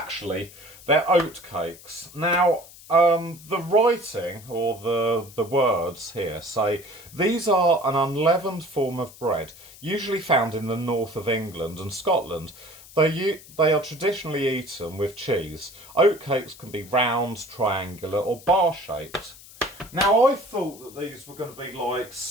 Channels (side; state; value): left; noise; hiss, 20 dB below the sound